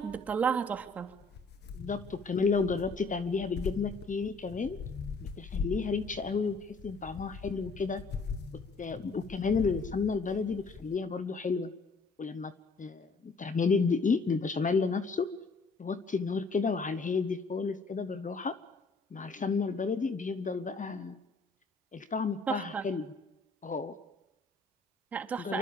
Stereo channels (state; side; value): quieter; right; 3.6 dB